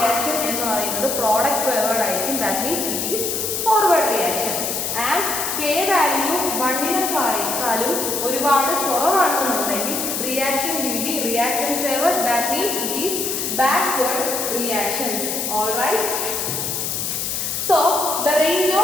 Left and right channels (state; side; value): noise; left; hiss, 2 dB below the sound